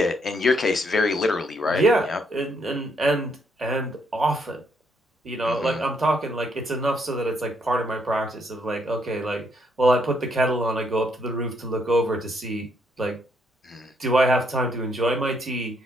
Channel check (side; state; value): both; normal; correlation 0.73